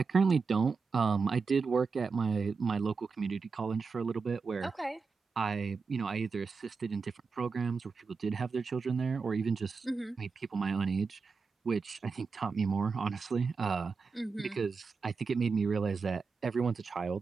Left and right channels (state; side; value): quieter; left; 4.9 dB